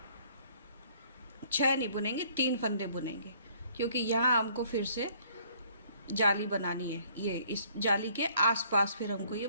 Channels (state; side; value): inverted; both; correlation -0.60